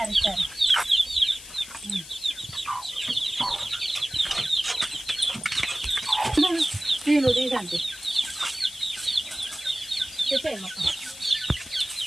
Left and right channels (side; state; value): left; noise; hiss, 15 dB below the sound